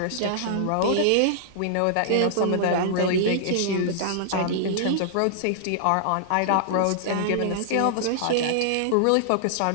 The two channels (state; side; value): different; both; correlation -0.01